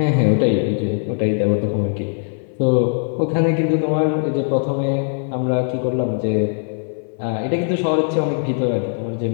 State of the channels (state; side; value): silent; right; 58 dB below the other